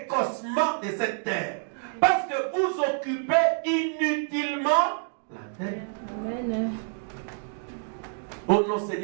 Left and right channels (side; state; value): left; silent; 60 dB below the other